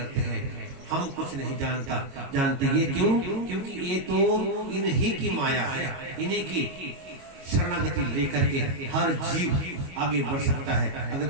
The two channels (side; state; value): left; late; 22 ms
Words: हैं। हम कुछ नहीं जानते। ये क्यों? क्योंकि ये तो इन्हीं की माया है, इन्हीं की शरणागति लेकर के हर जीव आगे बढ़ सकता है।